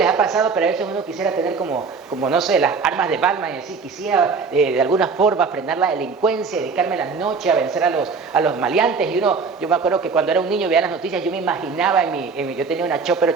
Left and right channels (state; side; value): quieter; left; 5.0 dB